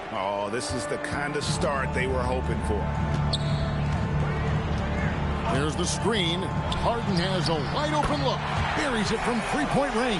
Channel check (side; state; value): both; identical; correlation 1.00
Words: Oh, this is the kind of start they were hoping for. There's the screen. Harden has a wide open look. Buries it from 3-point